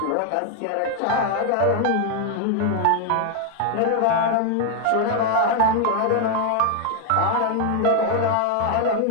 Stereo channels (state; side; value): different; both; correlation 0.00